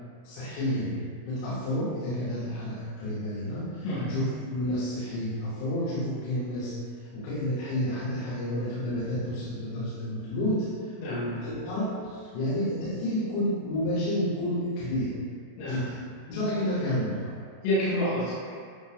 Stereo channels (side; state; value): right; late; 33 ms